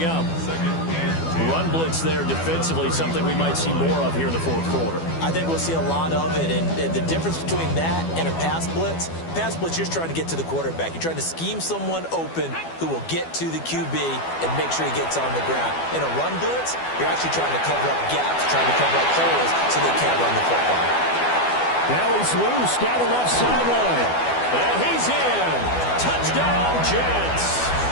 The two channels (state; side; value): late; right; 12 ms